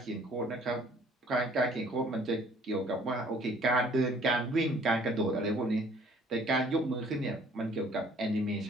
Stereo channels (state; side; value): normal; both; correlation 0.57